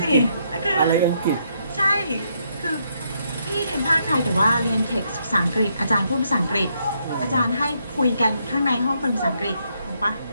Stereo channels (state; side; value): inverted; both; correlation -0.75